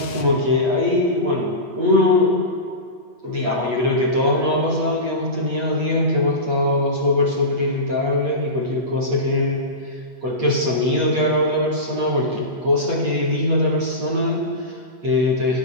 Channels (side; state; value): left; late; 8.3 ms